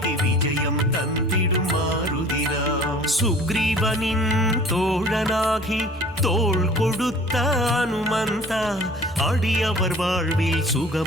விஜயம் தந்திடும் மாருதிராம். சுக்ரீவனின் தோழனாகி தோள் கொடுத்த அனுமந்தா அடியவர் வாழ்வில்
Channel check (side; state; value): both; normal; correlation 0.47